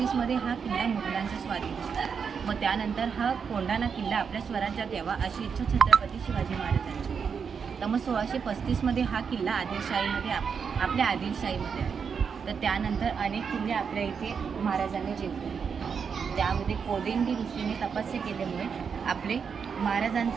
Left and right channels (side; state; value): left; quieter; 6.4 dB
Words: हा किल्ला मुघलांच्या स्वाधीन होता. मग त्यानंतर हा कोंढाणा किल्ला आपल्या स्वराज्यात यावा अशी इच्छा छत्रपती शिवाजी महाराजांची होती. तर मग 1635मध्ये हा किल्ला आदिलशाहीमध्ये आपल्या आदिलशाहीमध्ये आहे. तर त्यानंतर अनेक किल्ले आपल्या इथे महाराजांनी जिंकले. त्यामध्ये कोदिंडी ऋषीने तपस्या केल्यामुळे आपले